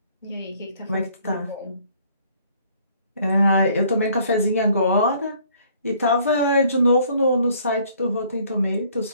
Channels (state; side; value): inverted; both; correlation -0.60